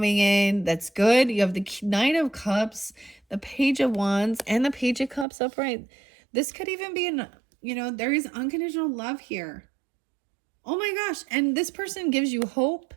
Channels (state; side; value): drops out; left; at 5.2 s